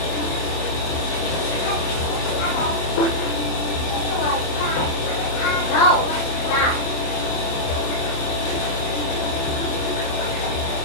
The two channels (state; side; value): late; right; 27 ms